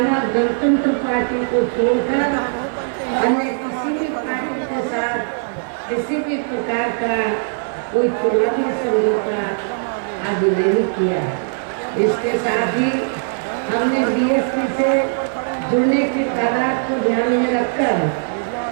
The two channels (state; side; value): silent; left; 57 dB below the other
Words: गणतंत्र पार्टी को छोड़कर अन्य किसी भी पार्टी के साथ किसी भी प्रकार का कोई चुनावी समझौता आदि नहीं किया। इसके साथ ही हमने बीएसपी से जुड़ने की तादाद को ध्यान में रखकर